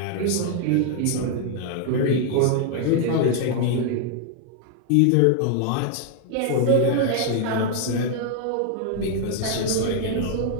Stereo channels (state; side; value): different; both; correlation 0.00